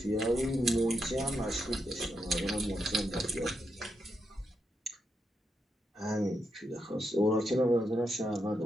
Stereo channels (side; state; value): both; normal; correlation 0.83